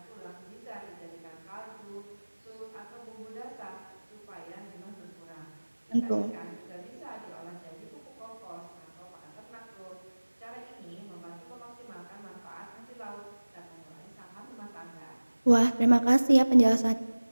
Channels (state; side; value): inverted; both; correlation -1.00